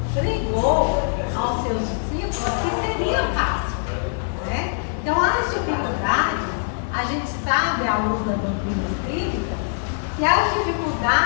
pregou aos seus discípulos que seria fácil. Né? Então as dificuldades, a gente sabe à luz da doutrina espírita, que as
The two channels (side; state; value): right; silent; digital silence